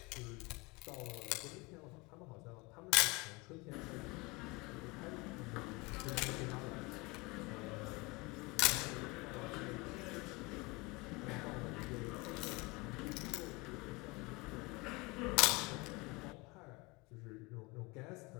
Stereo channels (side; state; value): right; quieter; 25.6 dB